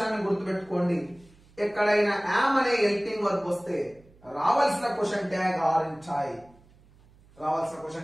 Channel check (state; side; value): noise; right; hum, 28 dB below the sound